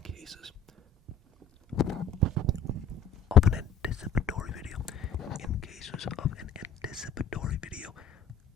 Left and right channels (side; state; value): right; quieter; 4.9 dB